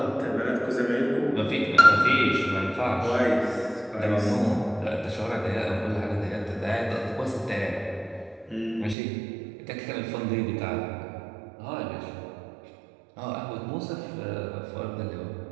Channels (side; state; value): left; drops out; at 9.0 s